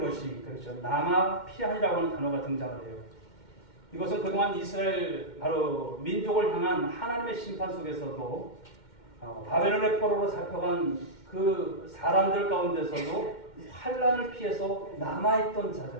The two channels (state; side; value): late; right; 2.1 ms